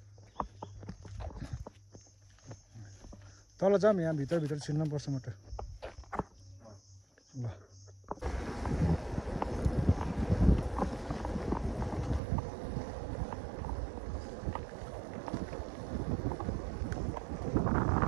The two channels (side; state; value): left; drops out; at 12.2 s